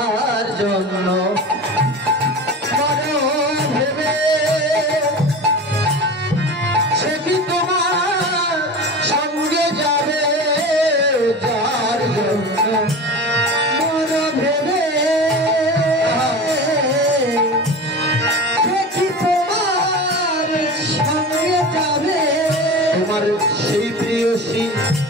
জন্য ভেবে সে কি তোমার সঙ্গে যাবে যার জন্য ভেবে সে কি তোমার সঙ্গে যাবে তোমার সেই প্রিয়সী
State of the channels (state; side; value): normal; both; correlation 0.32